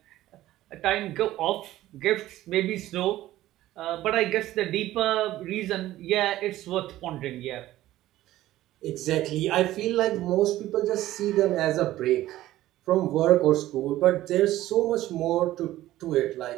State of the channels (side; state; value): left; quieter; 15.0 dB